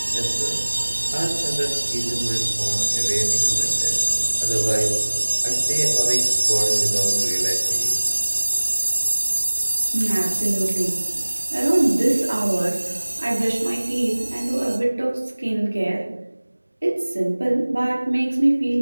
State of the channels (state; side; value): inverted; both; correlation -1.00